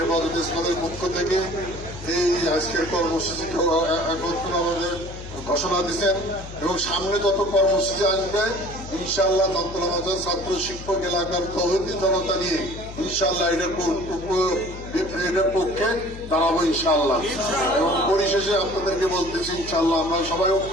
ইসলামের পক্ষ থেকে এই আজকের কর্মসূচি আমাদের ঘোষণা দিচ্ছেন, এবং সামনে যত কর্মসূচি আসবে ইনশাআল্লাহ তন্ত্র ছাত্র শিক্ষক এলাকার তৌহিদি জনতা নিয়ে ইনশাআল্লাহ এটার পক্ষে দাঁড়াবো ইনশাআল্লাহ। এবং পরিশেষে আপনাদেরকে বলতেছি ইনশাআল্লাহ আমরা সবাই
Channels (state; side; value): noise; left; hum, 12 dB below the sound